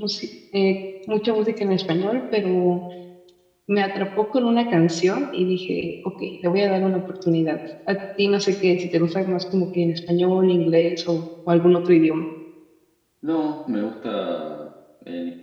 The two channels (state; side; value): identical; both; correlation 1.00